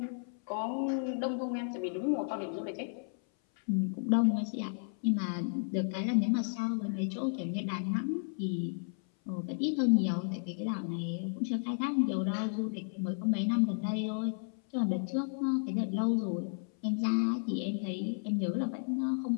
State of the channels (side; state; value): right; silent; 56 dB below the other